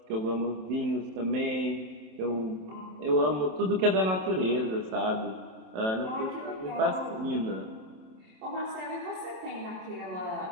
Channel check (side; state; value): left; late; 27 ms